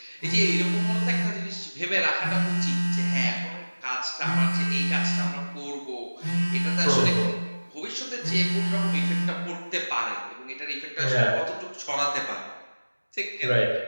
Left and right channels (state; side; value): inverted; both; correlation -1.00